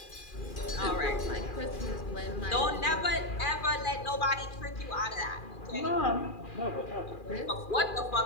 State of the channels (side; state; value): right; late; 2.4 ms